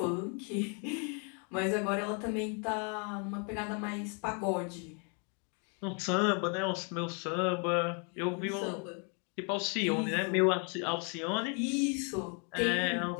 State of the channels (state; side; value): quieter; right; 38.0 dB